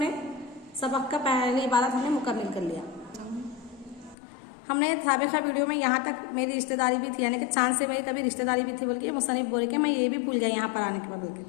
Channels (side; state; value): right; drops out; at 4.2 s